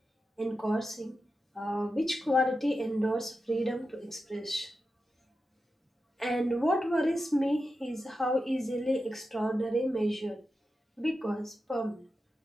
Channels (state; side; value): normal; both; correlation 0.90